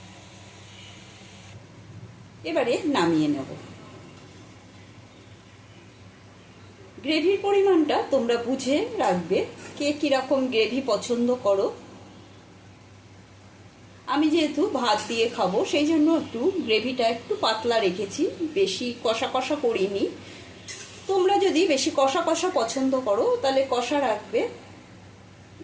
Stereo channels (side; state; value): both; identical; correlation 1.00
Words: এবারে নামিয়ে নেব। গ্রেভির পরিমাণটা তোমরা বুঝে রাখবে, কে কিরকম গ্রেভি পছন্দ করো। আমি যেহেতু ভাত দিয়ে খাবো সেই জন্য একটু গ্রেভিটা একটু পাতলা রেখেছি, বেশি কষা কষা করিনি। তোমরা যদি বেশি কষা কষা পছন্দ করো তাহলে কষা রাখবে।